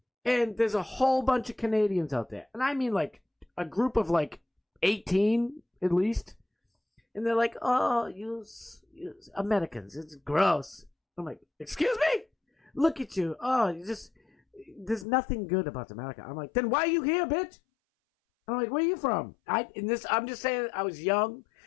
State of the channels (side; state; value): right; drops out; at 15.1 s